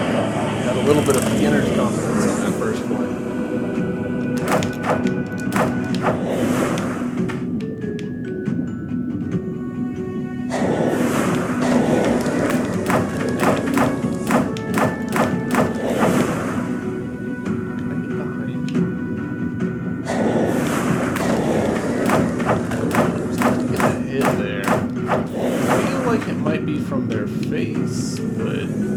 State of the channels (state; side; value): identical; both; correlation 1.00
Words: Got a little bit of beginner's confidence on that first one. From their face, but